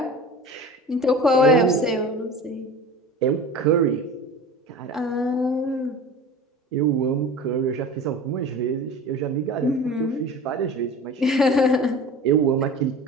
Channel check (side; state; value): both; normal; correlation 0.36